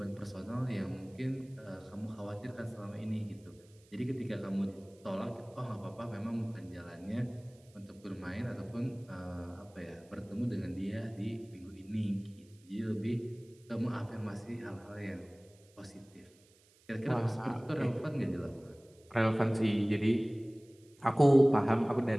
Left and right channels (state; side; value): noise; right; hiss, 29 dB below the sound